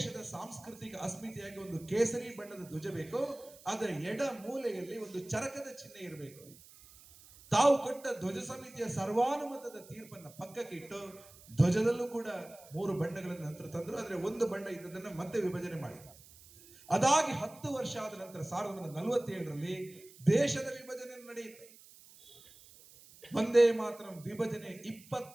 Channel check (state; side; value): noise; right; hiss, 22 dB below the sound